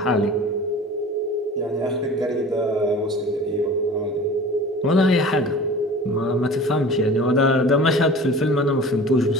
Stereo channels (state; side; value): normal; both; correlation 0.41